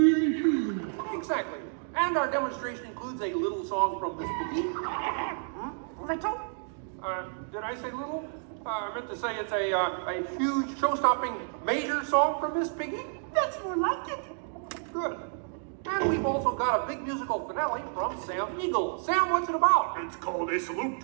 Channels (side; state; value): left; silent; 56 dB below the other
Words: Exactly. And our demonstration includes a little song from Miss Piggy. Little? Did I say little? I meant to say it's a huge, show-stopping, major song from Miss Piggy. That's more like it. Good. And we've also got a big musical finale from Sam Eagle. Sam, what's it about? It's called A Salute